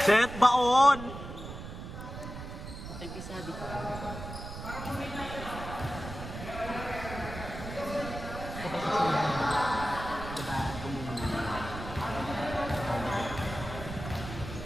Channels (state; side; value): noise; right; rumble, 9 dB below the sound